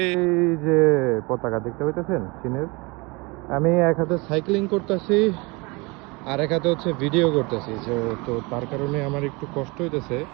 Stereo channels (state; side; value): quieter; left; 26.6 dB